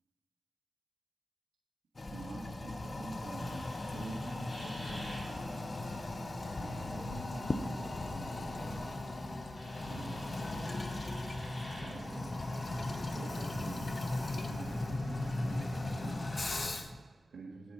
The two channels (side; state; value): both; normal; correlation 0.95